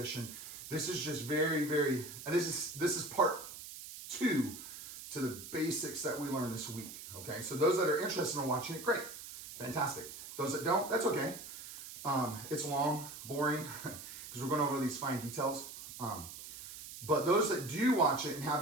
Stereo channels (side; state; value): right; noise; hiss, 12 dB below the sound